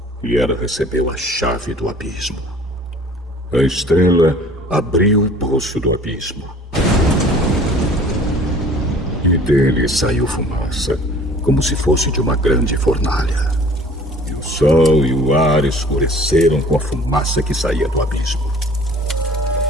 E ela recebeu a chave do abismo. A estrela abriu o poço do abismo. E dele saiu fumaça, como se fosse de uma grande fornalha. E o sol e o ar escureceram com a fumaça que saía do abismo.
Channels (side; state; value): both; normal; correlation 0.49